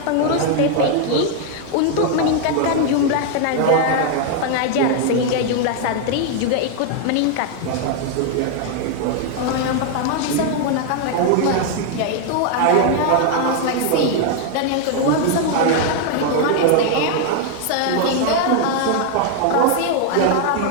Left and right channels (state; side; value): different; both; correlation 0.00